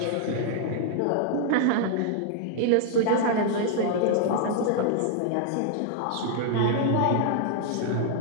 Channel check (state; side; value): different; both; correlation 0.00